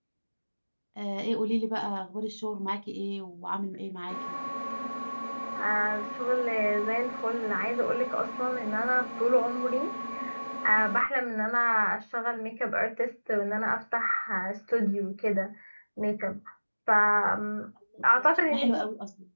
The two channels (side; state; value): both; inverted; correlation -1.00